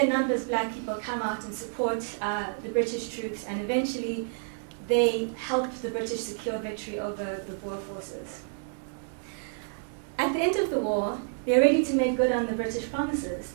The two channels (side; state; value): left; silent; digital silence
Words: numbers, black people come out and support the British troops, and eventually they helped the British secure victory over the Boer forces. At the end of the war, they're ready to make good on the British promises.